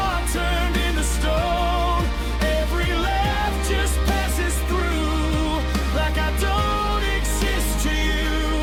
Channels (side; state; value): both; identical; correlation 1.00